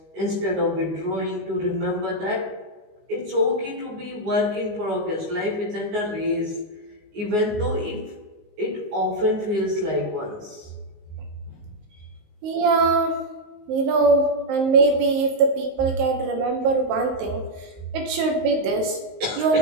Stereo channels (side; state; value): left; late; 19 ms